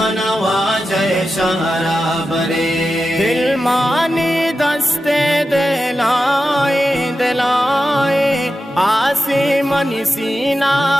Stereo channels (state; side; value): normal; both; correlation 0.91